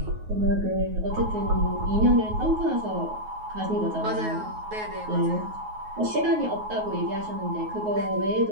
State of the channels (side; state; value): left; late; 9.4 ms